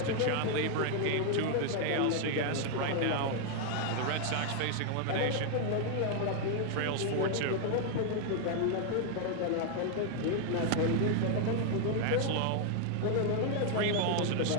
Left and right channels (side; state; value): both; different; correlation 0.00